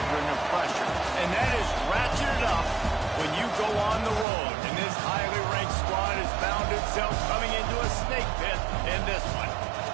of pressure, and that is ratcheted up when you go on the road. And this highly ranked squad has found itself coming into a snake pit in this one.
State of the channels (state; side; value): drops out; left; at 4.2 s